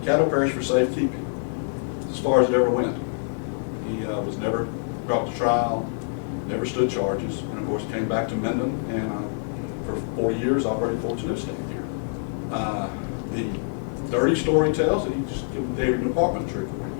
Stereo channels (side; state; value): right; silent; 61 dB below the other